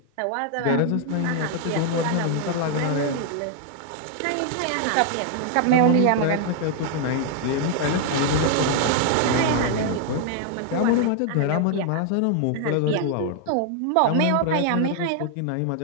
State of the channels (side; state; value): both; different; correlation 0.00